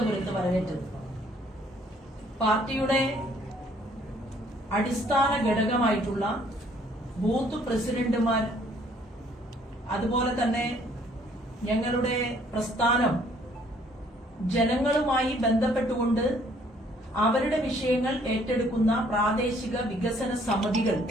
വരവേറ്റത്. പാർട്ടിയുടെ അടിസ്ഥാന ഘടകമായിട്ടുള്ള ബൂത്ത് പ്രസിഡന്റുമാർ, അതുപോലെ തന്നെ ഞങ്ങളുടെ പ്രസ്ഥാനം ജനങ്ങളുമായി ബന്ധപ്പെട്ടുകൊണ്ട് അവരുടെ വിഷയങ്ങൾ ഏറ്റെടുക്കുന്ന പ്രാദേശിക വികസന സമിതികൾ,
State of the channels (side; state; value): both; normal; correlation 0.62